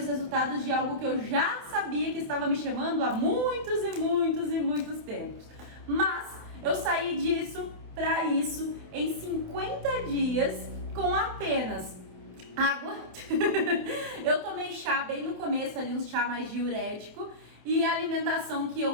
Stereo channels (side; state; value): left; late; 28 ms